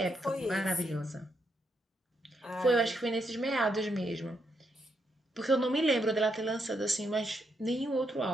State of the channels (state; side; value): normal; both; correlation 0.79